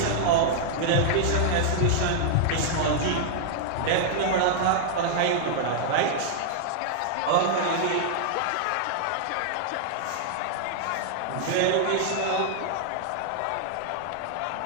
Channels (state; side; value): different; both; correlation -0.01